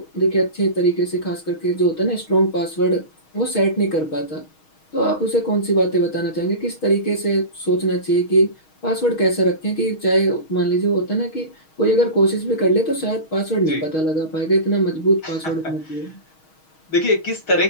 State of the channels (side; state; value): right; late; 6.3 ms